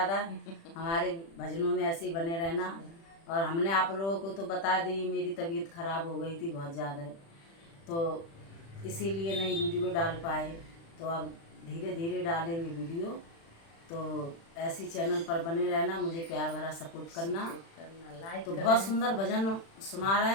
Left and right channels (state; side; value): late; right; 36 ms